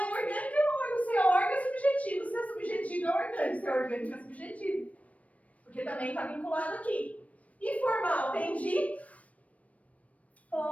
orgânico é órgão. Se é órgão é subjetivo. Se é subjetivo é orgânico. Se é orgânico é subjetivo. Porque também está vinculado aqui. E formal vem de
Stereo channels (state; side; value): late; right; 0.067 ms